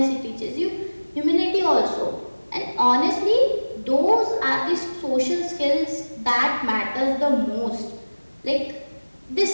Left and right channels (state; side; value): inverted; both; correlation -1.00